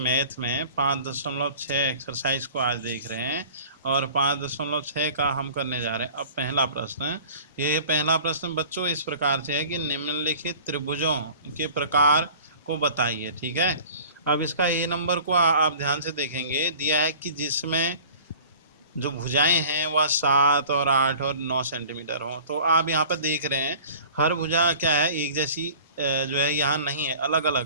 में 5.6 एक्सरसाइज को आज देख रहे हैं और 5.6 का हम करने जा रहे हैं। अब पहला प्रश्न, ये पहला प्रश्न बच्चों इस प्रकार से है कि निम्नलिखित त्रिभुजों के प्रकार को बताइए। ठीक है, अब इसका ए नंबर को आप ध्यान से देखेंगे, दिया है कि जिसमें जो भुजाएं हैं वह 7 और 8 और 9 सेंटीमीटर हो। तो आप यहाँ पर देख रहे हैं हर भुजा क्या है, एक जैसी जो है यहाँ नहीं है, अलग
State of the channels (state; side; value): inverted; both; correlation -0.45